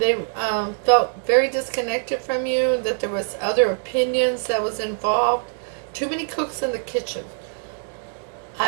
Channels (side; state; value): left; silent; digital silence